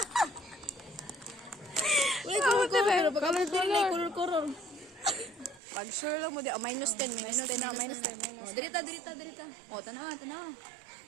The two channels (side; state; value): left; drops out; at 5.6 s